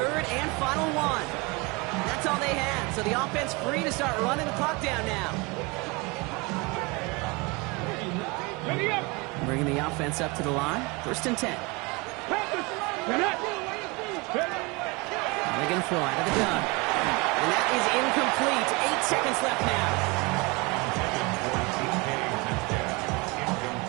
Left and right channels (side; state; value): left; quieter; 26.9 dB